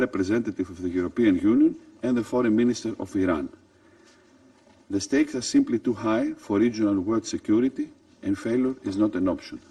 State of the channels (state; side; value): identical; both; correlation 1.00